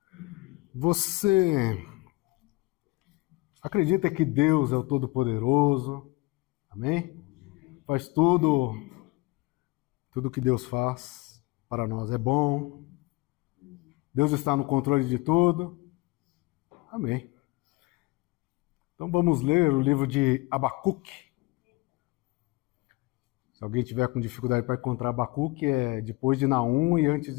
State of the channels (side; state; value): right; quieter; 22.7 dB